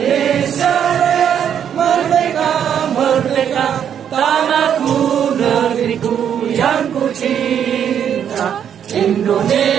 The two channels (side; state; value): left; quieter; 8.8 dB